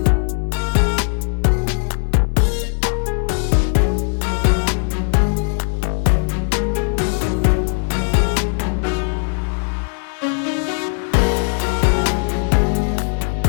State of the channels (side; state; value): right; silent; digital silence